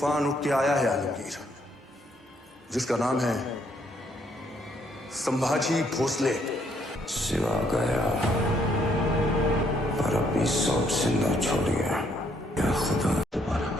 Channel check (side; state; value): both; normal; correlation 0.70